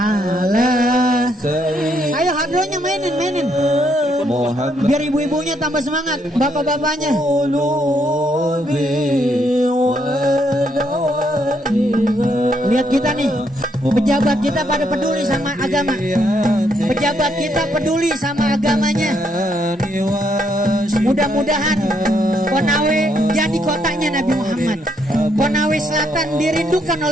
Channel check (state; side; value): normal; both; correlation 0.74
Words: Ayo hadronya mainin. Biar ibu-ibunya tambah semangat, bapak-bapaknya. Lihat kita nih, pejabat kita pada peduli sama agama. Pejabat kita peduli sama agamanya. Mudah-mudahan Konawe jadi kotanya Nabi Muhammad. Konawe Selatan dirindukan